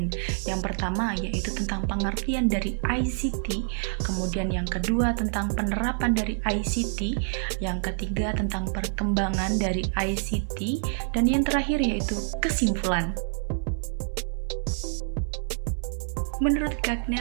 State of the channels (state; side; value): silent; left; 60 dB below the other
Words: Yang pertama yaitu tentang pengertian dari ICT, kemudian yang kedua tentang penerapan dari ICT, yang ketiga tentang perkembangan dari ICT, dan yang terakhir yaitu kesimpulan. Menurut